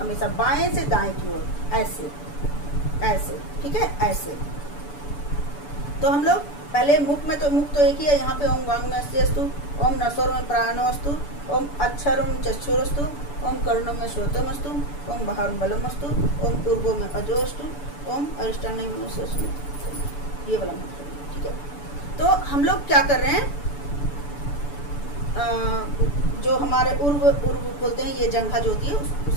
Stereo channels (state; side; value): late; right; 6.9 ms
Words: बाएं से दाएं की ओर, ऐसे ऐसे। ठीक है, ऐसे। तो हम लोग पहले मुख में, तो मुख तो एक ही है, यहाँ पे ओम वांग में अस्यस्तु ओम नसोर में प्राणो अस्तु ओम अक्षरम चक्षुरस्तु ओम कर्णों में श्रोतम अस्तु ओम बाहर बलम अस्तु ओम पूर्वो में अजो अस्तु ओम अरिष्टान में, ये वाला मंत्र। ठीक है, तो हम लोग क्या कर रहे हैं, जो हमारे उर्व बोलते हैं, ये जंघा जो होती है